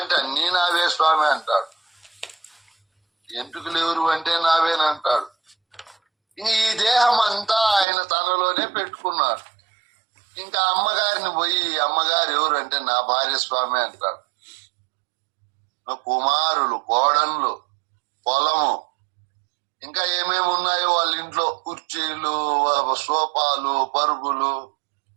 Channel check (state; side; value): drops out; left; at 7.9 s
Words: అన్నీ నావే స్వామి అంటాడు. ఎంటుకలు ఎవరు అంటే నావేనంటాడు. ఈ దేహం అంతా ఆయన తనలోనే పెట్టుకున్నాడు. ఇంకా అమ్మగారిని పోయి, అమ్మగారు ఎవరు అంటే నా భార్య స్వామి అంటాడు. కుమారులు, కోడన్లు, పొలము, ఇంకా ఏమేమి ఉన్నాయో వాళ్ళ ఇంట్లో, కుర్చీలు, సోఫాలు, పరుగులు,